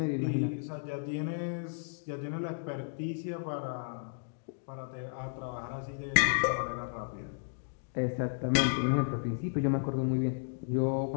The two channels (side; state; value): right; silent; digital silence